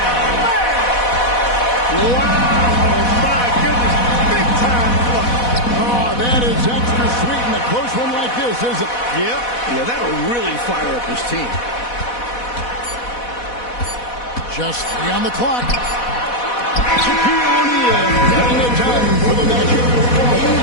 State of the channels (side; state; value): right; late; 4.1 ms